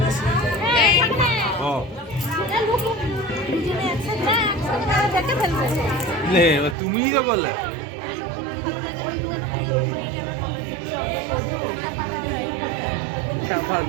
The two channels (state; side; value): drops out; left; at 6.8 s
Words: তুমিই তো বললে।